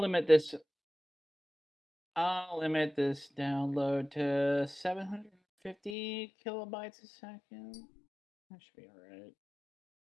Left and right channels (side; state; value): right; drops out; at 6.0 s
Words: limit this download to 750 kilobytes a second. That should be alright.